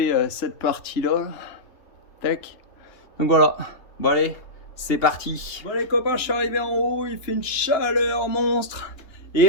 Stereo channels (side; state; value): right; late; 2.9 ms